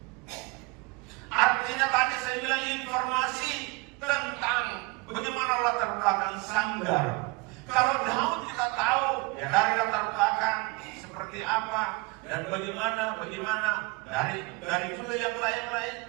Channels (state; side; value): quieter; left; 26.0 dB